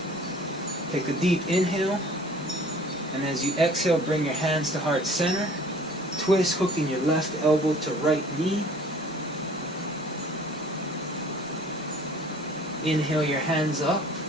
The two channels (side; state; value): both; normal; correlation 0.50